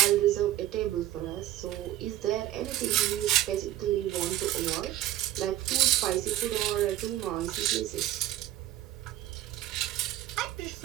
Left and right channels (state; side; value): quieter; left; 13.5 dB